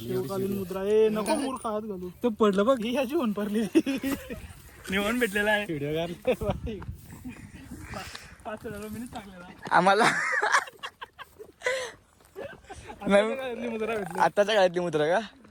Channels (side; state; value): both; identical; correlation 1.00